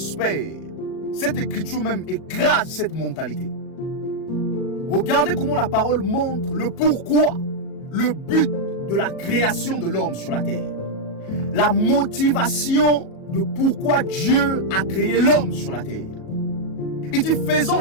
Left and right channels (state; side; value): late; right; 37 ms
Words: Cette écriture même écrase cette mentalité. Regardez comment la parole montre le pourquoi, le but de la création de l'homme sur la terre. La motivation de pourquoi Dieu a créé l'homme sur la terre. Il dit, faisons